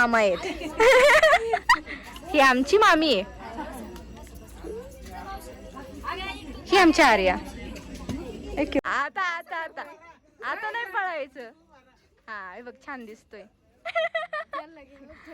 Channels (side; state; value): both; identical; correlation 1.00